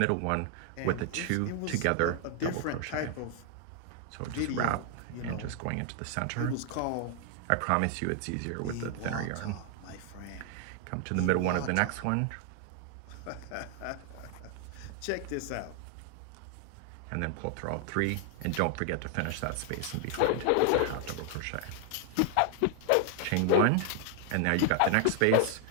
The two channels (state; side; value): different; both; correlation 0.00